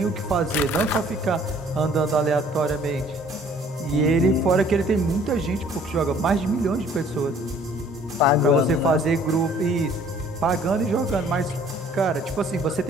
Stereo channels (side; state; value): both; normal; correlation 0.56